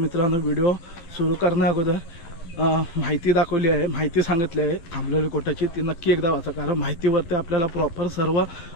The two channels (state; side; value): late; right; 12 ms